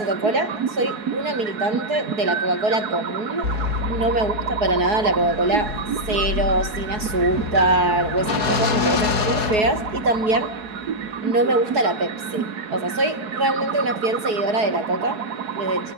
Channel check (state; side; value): late; left; 4.7 ms